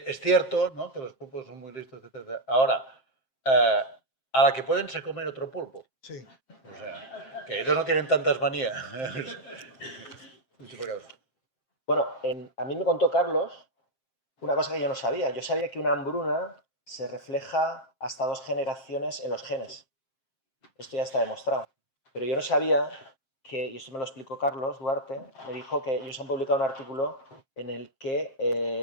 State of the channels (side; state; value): right; late; 7.6 ms